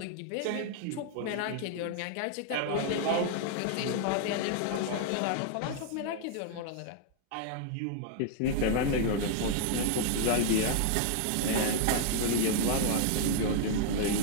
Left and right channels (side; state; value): both; different; correlation 0.00